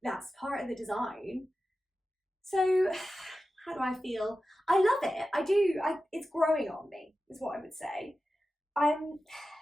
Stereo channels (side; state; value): both; normal; correlation 0.93